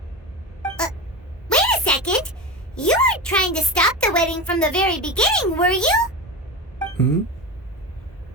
Wait a second! You weren't trying to stop the wedding from the very beginning, were you?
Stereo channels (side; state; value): both; normal; correlation 0.24